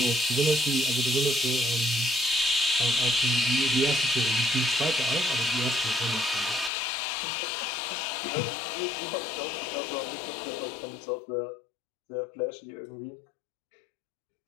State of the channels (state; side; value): drops out; right; at 6.7 s